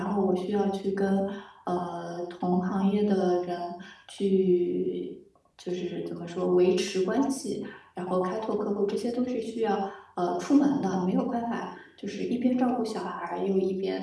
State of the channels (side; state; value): both; identical; correlation 1.00